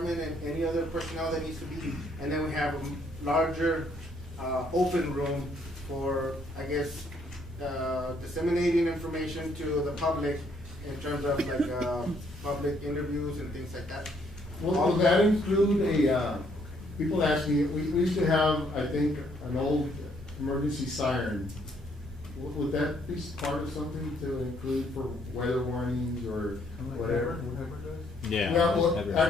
and any other personnel that needs to be. And then we have a larger, open room for, I guess, disseminating information to the public in terms of like, public interviews and things like that. Will that include people ask me, we used to have, I think, an old emergency siren. Would that be part of something to include for weather warnings or whatever? Yeah. Well,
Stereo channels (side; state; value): both; normal; correlation 0.68